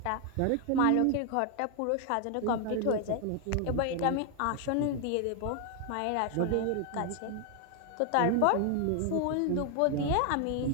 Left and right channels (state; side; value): different; both; correlation 0.00